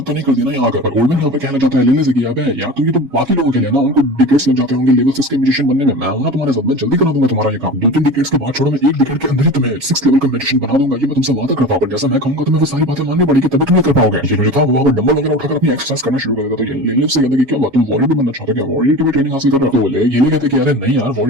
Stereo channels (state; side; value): late; left; 7.2 ms